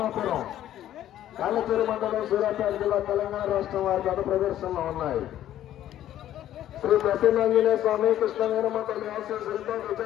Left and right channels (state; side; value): quieter; right; 12.2 dB